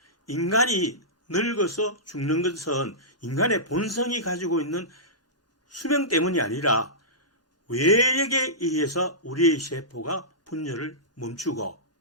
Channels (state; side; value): normal; both; correlation -0.17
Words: 인간이 늙어서 죽는 것은 인간의 본성이 가지고 있는 수명 때문이 아니라 외력에 의해서 우리의 세포가 분열을 멈추고